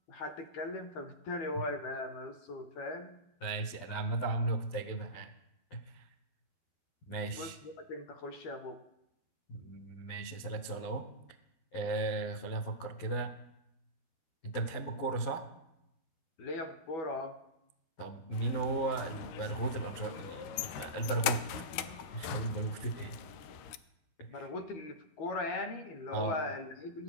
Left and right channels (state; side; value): late; right; 13 ms